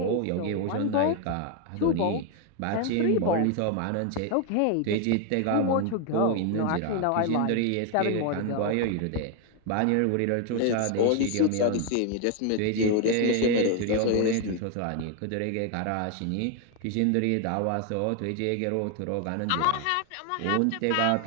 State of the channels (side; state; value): both; different; correlation 0.01